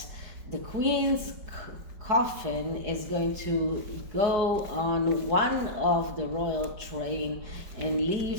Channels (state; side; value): late; left; 4.7 ms